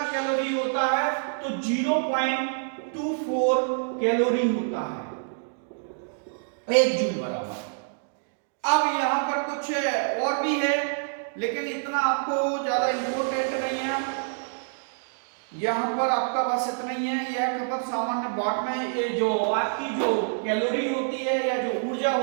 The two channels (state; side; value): silent; left; digital silence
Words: कैलोरी होता है, तो 0.24 कैलोरी होता है 1 जूल बराबर। अब यहां पर कुछ और भी है, लेकिन इतना आपको ज्यादा इंपॉर्टेंट नहीं है। यहाँ पर आपका बस इतना ही है। यह खपत सामान्य वाट में, ये जो आपकी जो कैलोरी होती है या जो ऊर्जा